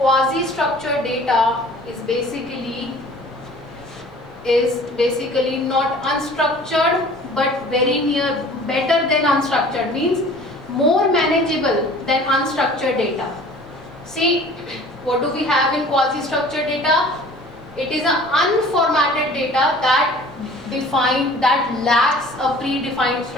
data is basically not unstructured but very near, better than unstructured, means more manageable than unstructured data. See, what do we have in quasi-structured data? It is an unformatted data that lacks a predefined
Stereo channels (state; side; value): normal; both; correlation 0.47